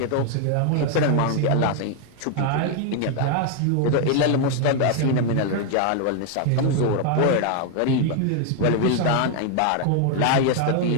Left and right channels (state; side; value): different; both; correlation 0.00